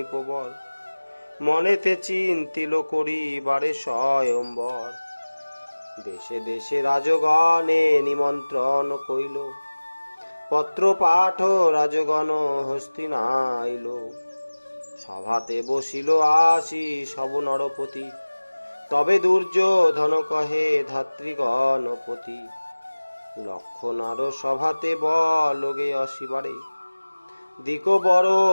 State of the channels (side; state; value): both; inverted; correlation -1.00